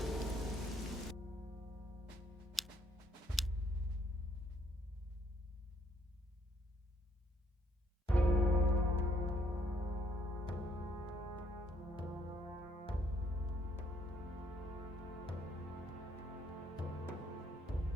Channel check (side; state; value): both; normal; correlation 0.68